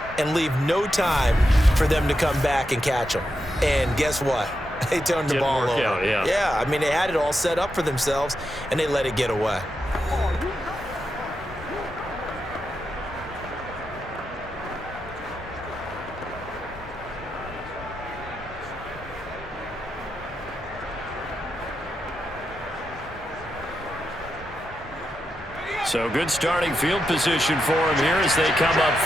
and leave no time for them to come back and catch them. And guess what? They turned the ball over. Out, yeah. Yeah, I mean, they had it all set up for themselves, and they let it get away. So good starting field position for him here as they come up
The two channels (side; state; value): both; normal; correlation 0.86